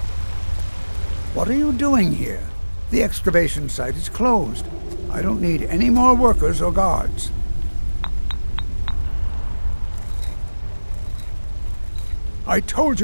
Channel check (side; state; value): both; inverted; correlation -1.00